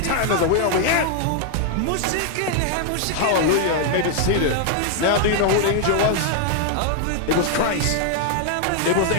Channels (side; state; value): both; different; correlation 0.00